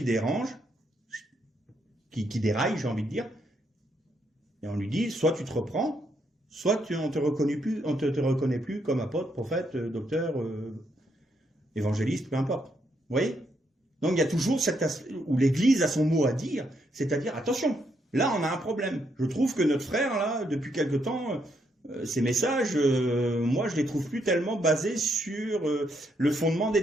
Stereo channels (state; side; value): normal; both; correlation 0.76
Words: dérange, qui déraille, j'ai envie de dire, et on lui dit, soit tu te reprends, soit on te reconnaît plus comme apôtre, prophète, docteur, évangéliste, peu importe. Vous voyez? Donc il y a toujours cet aspect où l'Église a son mot à dire, c'est-à-dire, attention, là on a un problème. Je trouve que notre frère, là, depuis quelque temps, ces messages, moi je les trouve plus tellement basés sur le fondement des